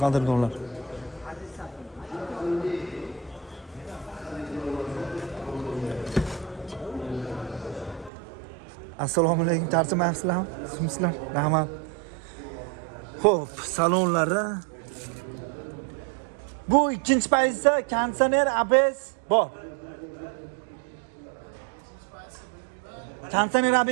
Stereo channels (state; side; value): drops out; left; at 8.1 s